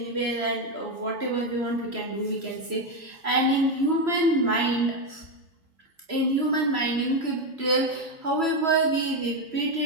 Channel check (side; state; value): left; late; 3.0 ms